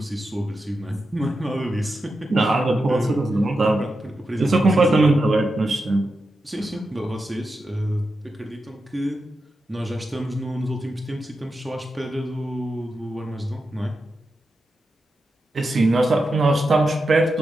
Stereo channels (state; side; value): normal; both; correlation 0.89